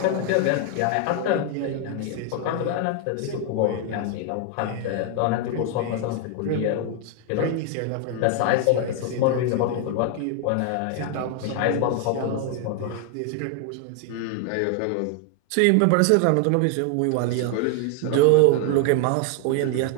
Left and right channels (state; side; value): different; both; correlation 0.01